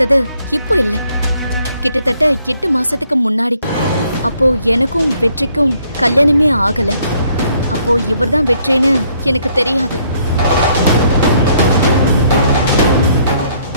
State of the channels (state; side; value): inverted; both; correlation -0.67